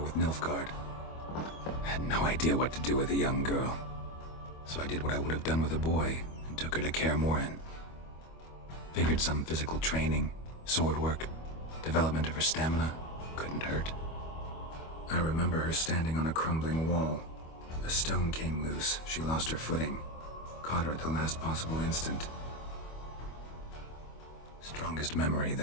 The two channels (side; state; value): right; late; 25 ms